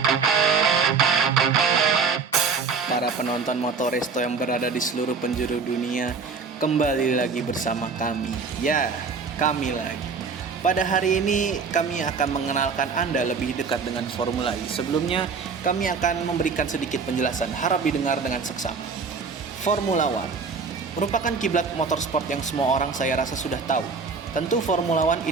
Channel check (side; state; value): left; quieter; 5.1 dB